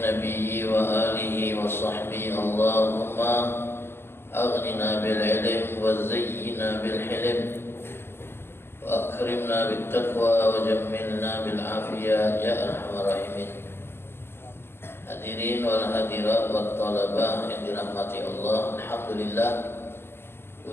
nabiyyi wa alihi wa sahbihi. Allahumma aghnina bil ilm wa zayyina bil hilm wa akrimna bit taqwa wa jammilna bil afiyah ya arhamar rahimin. Hadirin wal hadirat wat talabah yang dirahmati Allah, alhamdulillah,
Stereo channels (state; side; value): late; right; 0.11 ms